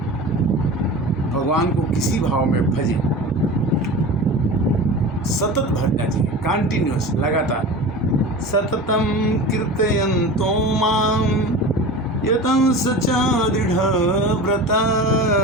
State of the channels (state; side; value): normal; both; correlation 0.33